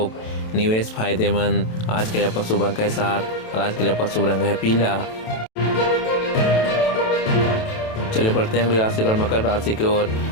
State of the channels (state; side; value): late; right; 27 ms